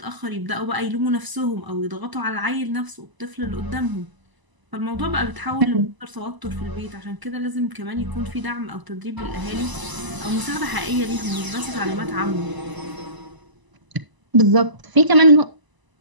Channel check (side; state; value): left; late; 1.0 ms